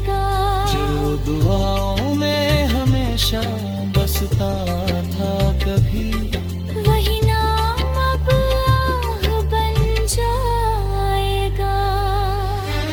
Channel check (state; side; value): identical; both; correlation 1.00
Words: जो दुआओं में हमेशा बसता था कभी, वही नाम अब आह बन जाएगा।